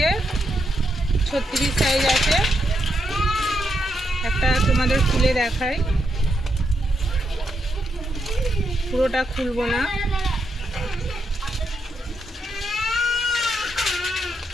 36 সাইজ আছে। একটা তোমাদের খুলে দেখাই, পুরোটা খুলবো না।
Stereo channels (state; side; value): normal; both; correlation 0.81